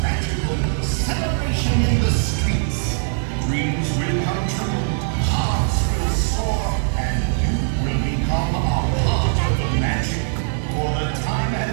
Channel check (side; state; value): left; silent; digital silence